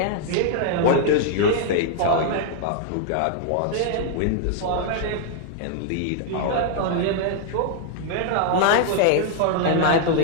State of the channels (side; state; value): both; different; correlation -0.01